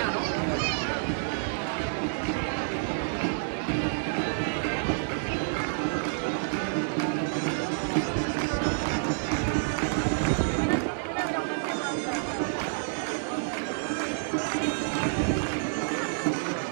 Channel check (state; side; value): silent; left; digital silence